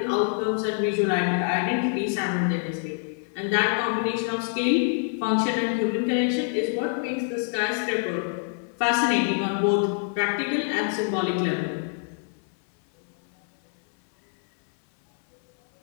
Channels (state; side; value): silent; right; 61 dB below the other